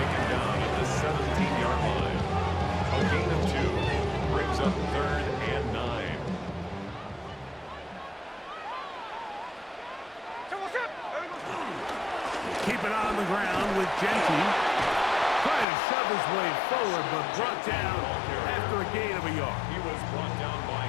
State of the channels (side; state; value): right; drops out; at 15.7 s